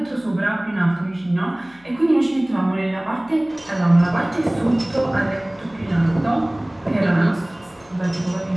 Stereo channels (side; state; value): left; noise; hum, 29 dB below the sound